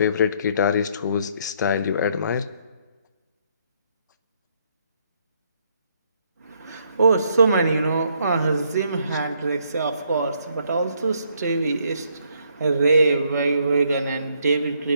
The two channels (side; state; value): both; inverted; correlation -0.71